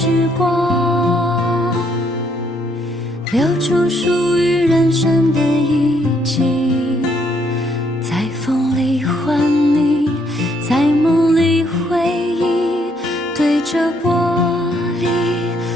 光，留住属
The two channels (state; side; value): normal; both; correlation 0.70